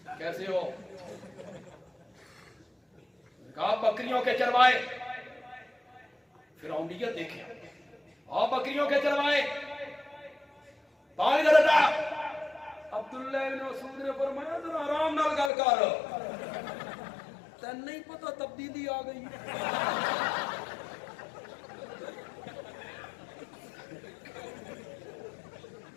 کیسے ہو؟ کہا بکریوں کے چروائے۔ فرعونیت دیکھیں، بکریوں کے چروائے، پانی ادھر ہٹا۔ عبداللہ بن مسعود نے فرمایا ذرا آرام نال گل کر، تین نہیں پتا تبدیلی آ گئی،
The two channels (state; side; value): drops out; right; at 15.5 s